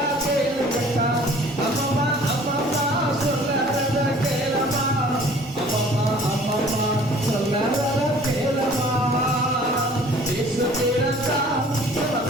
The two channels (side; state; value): both; normal; correlation 0.51